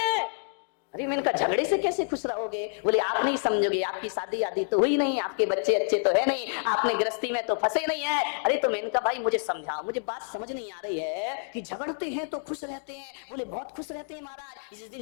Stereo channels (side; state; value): right; silent; digital silence